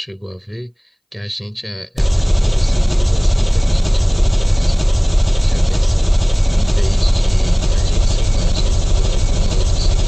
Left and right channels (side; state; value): both; identical; correlation 1.00